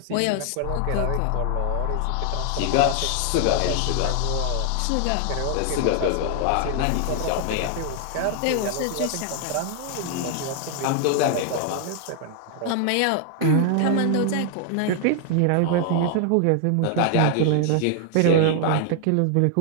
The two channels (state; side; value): different; both; correlation 0.00